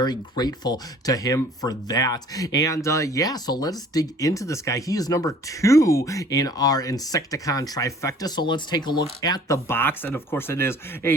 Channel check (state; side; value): normal; both; correlation 0.52